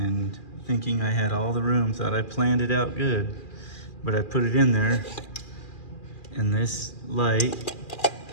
thinking I had all the room, thought I planned it out good, but I put it in there and this light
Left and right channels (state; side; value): late; right; 2.4 ms